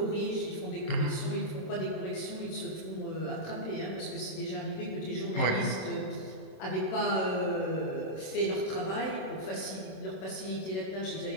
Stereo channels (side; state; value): right; late; 27 ms